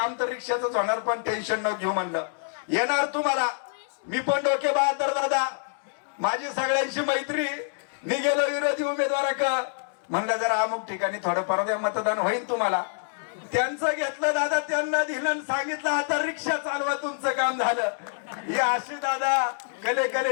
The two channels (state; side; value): silent; right; digital silence